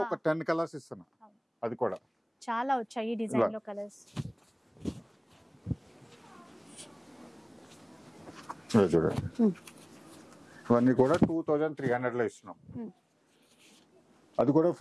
ఒక 10 కలర్స్ ఇస్తున్నా. అది కూడా చాలా వచ్చాయి ఈ డిజైన్ లో కలర్స్. చూడండి ఇవన్నీ కూడా 2300 లో ఇస్తున్నాం. అది కూడా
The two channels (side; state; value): both; identical; correlation 1.00